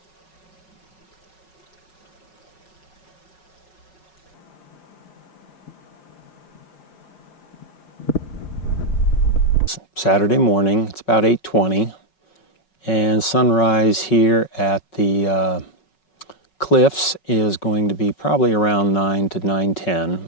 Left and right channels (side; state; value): right; late; 5.4 ms